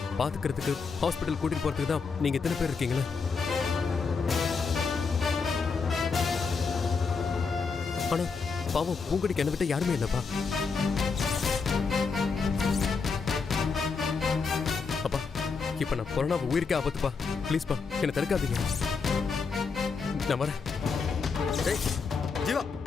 பாத்துக்கிறதுக்கு ஹாஸ்பிட்டல் கூட்டிட்டு போறதுக்கு தான் நீங்க எத்தனை பேர் இருக்கீங்களா? ஆனா பாவம், பூங்குடிக்கு என்ன விட்ட யாருமே இல்லப்பா. அப்பா, இப்ப நான் கொரோனா உயிருக்கே ஆபத்துப்பா. ப்ளீஸ்ப்பா, என்னை தடுக்காதீங்க. நான் வரேன். டேய் ஜீவா,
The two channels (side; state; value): right; quieter; 5.0 dB